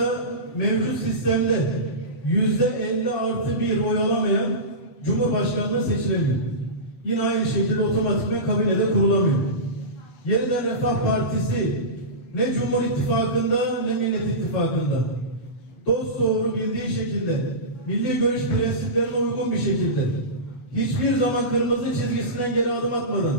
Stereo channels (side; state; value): right; late; 7.7 ms